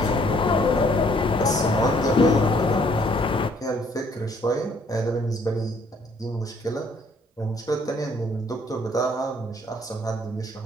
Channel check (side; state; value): both; normal; correlation 0.63